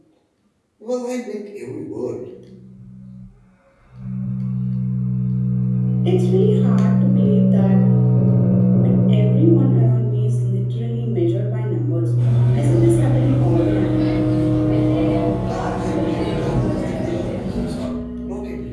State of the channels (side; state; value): both; identical; correlation 1.00